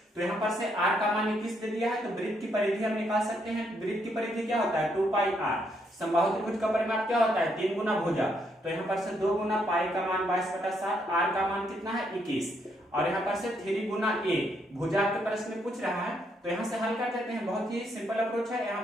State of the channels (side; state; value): both; normal; correlation 0.74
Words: तो यहाँ पर से r का मान 21 दे दिया है, तो वृत्त की परिधि हम निकाल सकते हैं। वृत्त की परिधि क्या होता है, 2 पाई r। समबाहु त्रिभुज का परिमाप क्या होता है, 3 गुना भुजा। तो यहाँ पर से 2 गुना पाई का मान 22/7, r का मान कितना है 21, और यहाँ पर से 3 गुना a। भुजा के प्रश्न में पूछ रहा है, तो यहाँ से हल कर देते हैं। बहुत ही सिंपल अप्रोच है। यहाँ